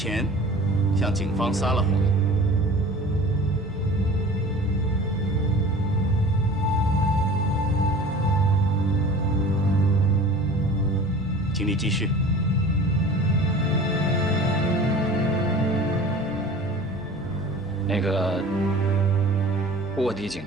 向警方撒了谎。请你继续。那个卧底警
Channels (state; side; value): normal; both; correlation 0.42